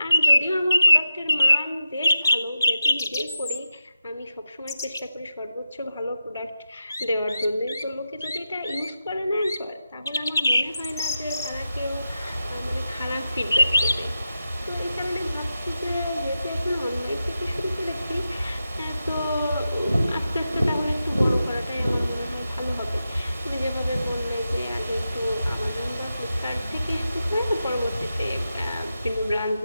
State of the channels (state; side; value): inverted; both; correlation -0.89